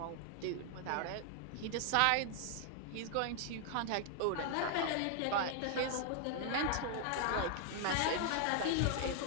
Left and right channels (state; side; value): different; both; correlation 0.00